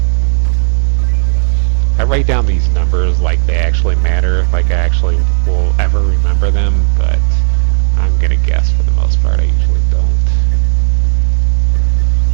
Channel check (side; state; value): left; silent; digital silence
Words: I write down these numbers like they actually matter, like I actually will ever remember them, but I'm gonna guess for the most part I usually don't.